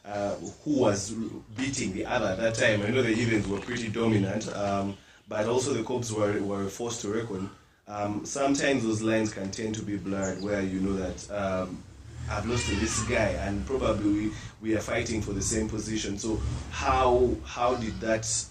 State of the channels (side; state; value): both; identical; correlation 1.00